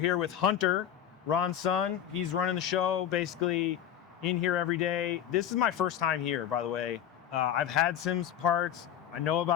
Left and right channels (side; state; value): right; quieter; 10.0 dB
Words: with Hunter, Ron's son. He's running the show, basically in here every day. This is my first time here, by the way. I've had Sims parts. I know